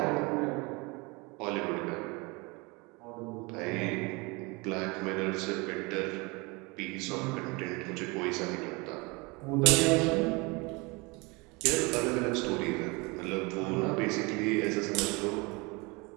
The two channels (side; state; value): left; quieter; 27.0 dB